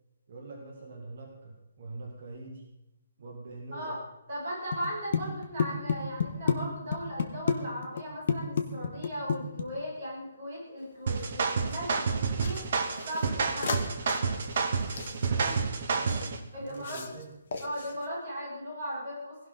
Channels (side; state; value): both; inverted; correlation -0.72